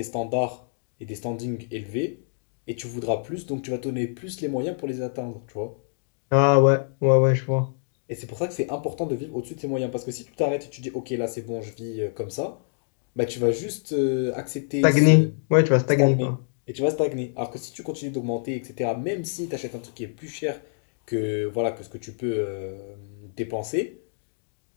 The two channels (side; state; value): right; silent; digital silence